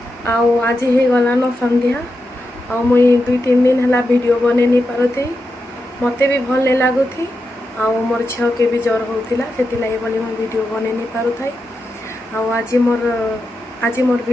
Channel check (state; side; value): normal; both; correlation 0.88